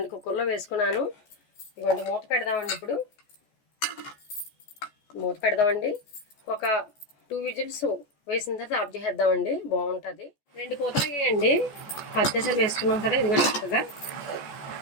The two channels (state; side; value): late; right; 14 ms